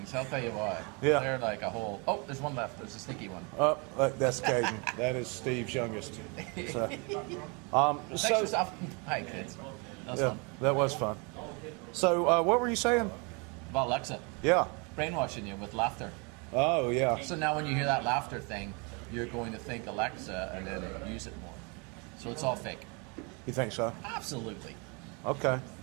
I'll tell you what. Yeah. They're like a whole. Oh, there's one left. There's a sticky one. Oh, that's Caden. That is Steve's youngest. So, Thanks for stopping by, kids. That was yeah, fun. that was fun. So, what were you saying? About Alexa. Yeah. Brainwashing you with laughter. Oh, yeah. So now when you hear that laughter thing, you're going to think Alexa and then use it more. So it's all fake. You think so? Absolutely. Okay.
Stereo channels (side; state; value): left; quieter; 31.9 dB